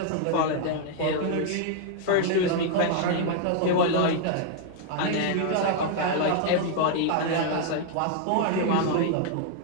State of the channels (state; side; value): different; both; correlation 0.00